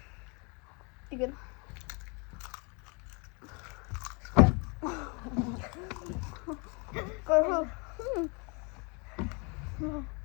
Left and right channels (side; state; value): right; quieter; 32.1 dB